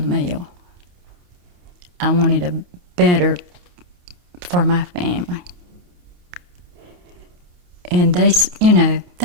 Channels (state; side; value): late; left; 28 ms